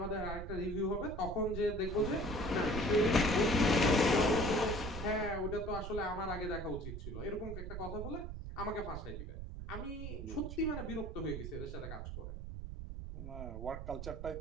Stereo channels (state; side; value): noise; right; rumble, 7 dB below the sound